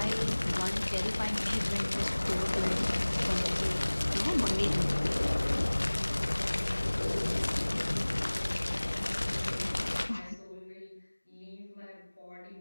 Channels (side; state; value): both; inverted; correlation -1.00